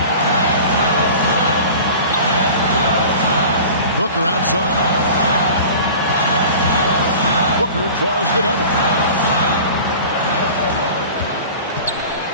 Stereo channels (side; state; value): both; inverted; correlation -0.39